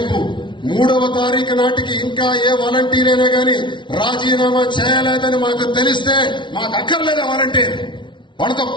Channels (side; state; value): right; late; 0.24 ms